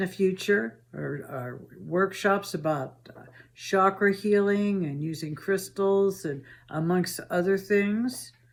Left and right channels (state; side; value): identical; both; correlation 1.00